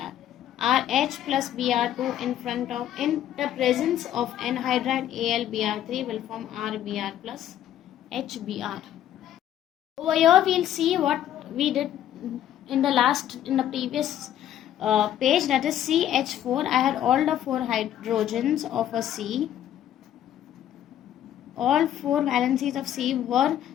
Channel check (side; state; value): right; quieter; 11.3 dB